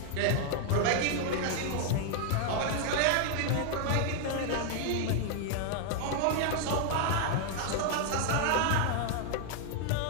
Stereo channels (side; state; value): both; different; correlation 0.00